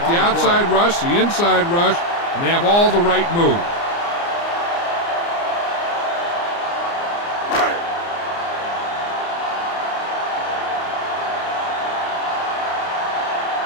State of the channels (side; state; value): right; late; 29 ms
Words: the outside rush, the inside rush, and they have all the right moves.